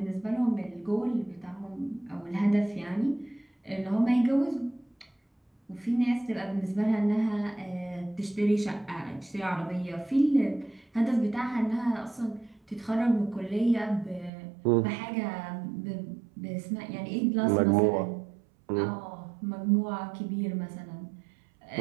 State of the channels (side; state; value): left; drops out; at 14.3 s